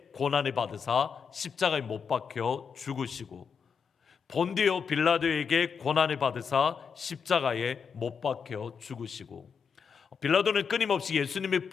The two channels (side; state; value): right; quieter; 6.3 dB